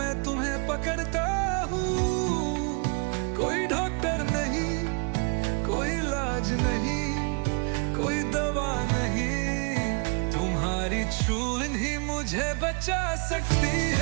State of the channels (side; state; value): left; quieter; 36.2 dB